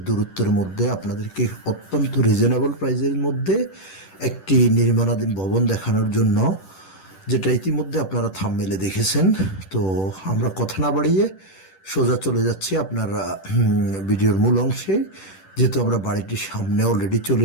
দূরত্বের মধ্যে আপনাদেরকে অত্যন্ত রিজনেবল প্রাইসের মধ্যে একটি নির্মাণাধীন ভবন দেখানোর জন্য, যেটা ইতিমধ্যে আপনারা থাম্বনেলে দেখেছেন। তো আমরা কথা না বাড়িয়ে সোজা চলে যাচ্ছি আপনার ভিডিওর মূল অংশে। যেহেতু আমরা বাড়িটির সামনে অলরেডি চলে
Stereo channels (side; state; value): right; late; 10 ms